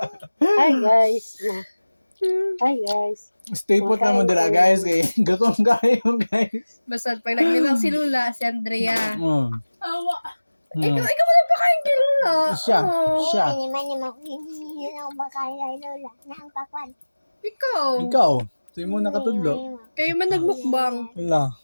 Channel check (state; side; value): inverted; both; correlation -1.00